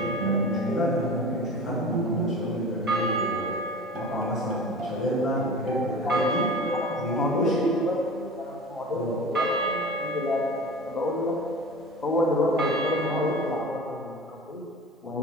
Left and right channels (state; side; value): normal; both; correlation 0.36